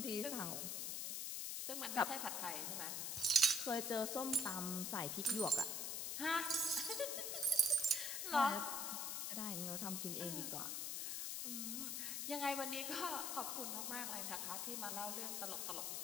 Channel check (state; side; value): noise; left; hiss, 1 dB below the sound